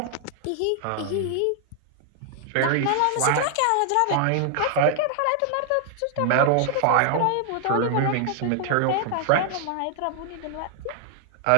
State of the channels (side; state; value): both; different; correlation 0.00